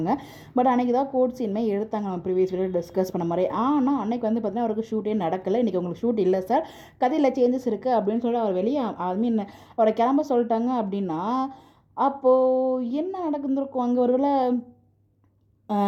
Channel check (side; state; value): both; identical; correlation 1.00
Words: பட் அன்றைக்கி தான் கோர்ட் சீனுமே எடுத்தாங்க, நம்ம ப்ரீவியஸ் வீடியோ டிஸ்கஸ் பண்ண மாதிரி. ஆனால் அன்றைக்கி வந்து பார்த்திங்கன்னா அவருக்கு ஷூட்டே நடக்கலை. இன்றைக்கி உங்களுக்கு ஷூட் இல்லை சார், கதையில் சேஞ்சஸ் இருக்குது அப்படின்னு சொல்லி அவர் வெளியே மீன் அவரை கிளம்ப சொல்லிட்டாங்க. அப்படின்னா அப்போது என்ன நடந்துருக்கும் அங்கே? ஒருவேளை